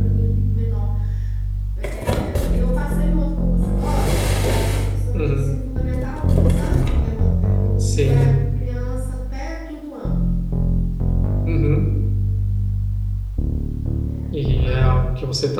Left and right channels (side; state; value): both; identical; correlation 1.00